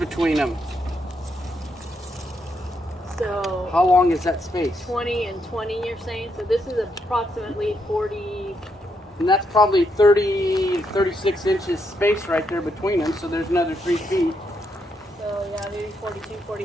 them. So How long is that space? 20 and 20, you're saying? So this is approximately 40. And that's probably 30, 36 inches space right there between them, so there's another 3 feet. So yeah, maybe 42,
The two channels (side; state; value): both; normal; correlation 0.79